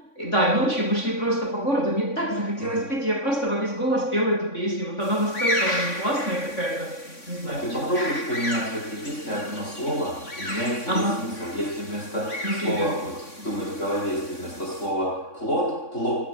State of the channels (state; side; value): late; right; 3.6 ms